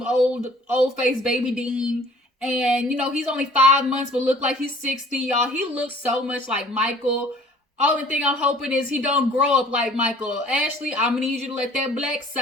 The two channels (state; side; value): normal; both; correlation 0.53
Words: old face baby Dean. And, you know, he's only 5 months, but look like he's 60, y'all. He looks so much like Michael. Only thing I'm hoping is he don't grow up like Michael. Ashley, I'm gonna need you to let that black